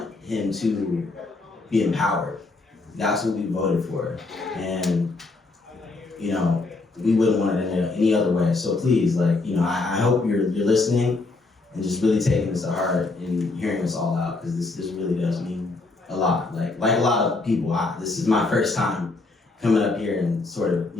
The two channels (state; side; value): quieter; right; 3.5 dB